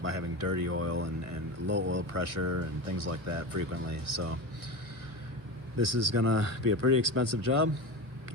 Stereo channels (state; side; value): late; left; 1.5 ms